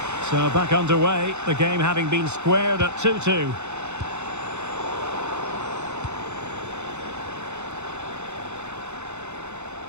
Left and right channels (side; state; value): left; late; 0.83 ms